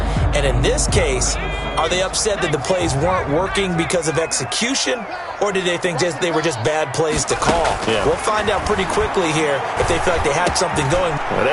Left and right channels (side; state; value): both; identical; correlation 1.00